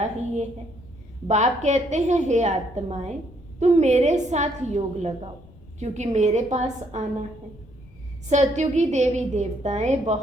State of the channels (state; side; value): noise; left; rumble, 23 dB below the sound